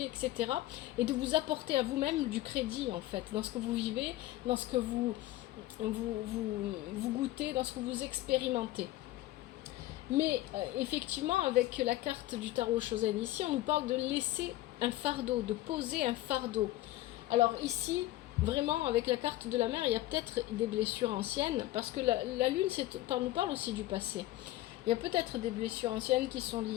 etc. Et de vous apporter à vous-même du crédit en fait, dans ce que vous vivez, dans ce que vous goûtez, dans ce que vous expérimentez. Mais effectivement, avec la carte du tarot Shozen ici, on nous parle de laisser un fardeau, de poser un fardeau. Alors ici, vraiment, avec la carte de la mer, il y a peut-être des blessures anciennes, parce que la lune nous parle aussi du passé. Il y a peut-être des blessures anciennes qui sont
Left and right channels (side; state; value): right; quieter; 16.3 dB